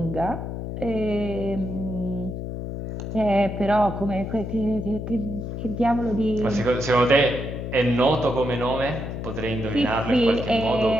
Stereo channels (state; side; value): noise; left; hum, 6 dB below the sound